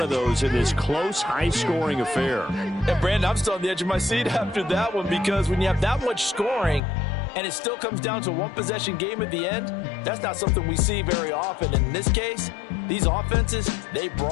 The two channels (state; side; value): drops out; right; at 6.8 s